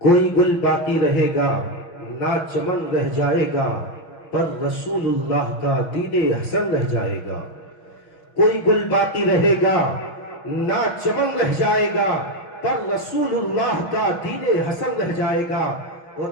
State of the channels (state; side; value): late; right; 6.4 ms